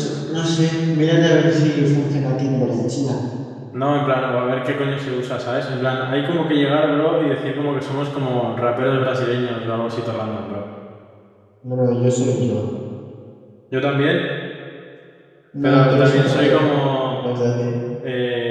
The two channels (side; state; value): both; identical; correlation 1.00